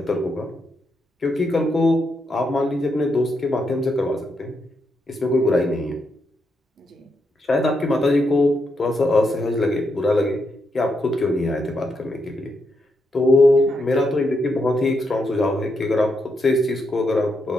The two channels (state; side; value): normal; both; correlation 0.81